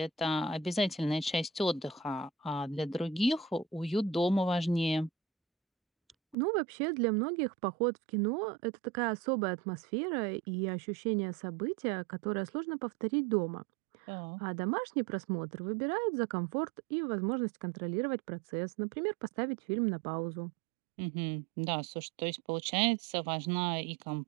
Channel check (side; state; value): left; drops out; at 6.4 s